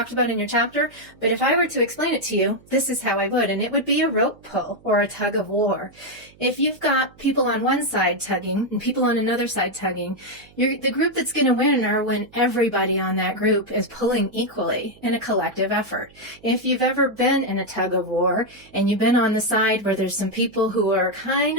about in your chapter, but if I were to explain it to you, this is how I would, and it would be a rope pull or a tug of war. If you've got people on one side tugging and people on another side tugging, the group that's going to win are when everybody on that group is pulling equally in a collective effort. If you've ever been in a tug of war and you've been on the side where there's some people who are kind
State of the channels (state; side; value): noise; right; hum, 27 dB below the sound